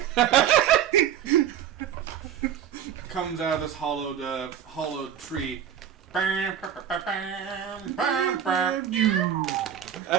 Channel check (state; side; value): quieter; left; 9.5 dB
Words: Comes out of this hollowed tree. I